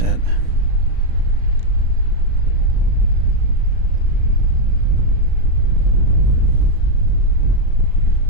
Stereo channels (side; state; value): left; late; 35 ms